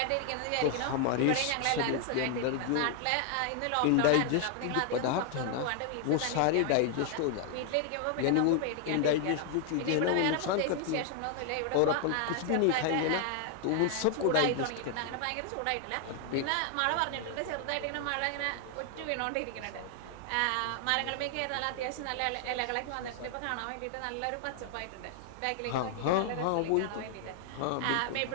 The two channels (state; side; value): different; both; correlation 0.00